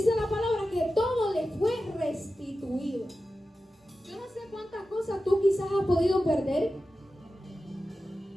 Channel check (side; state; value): both; normal; correlation 0.93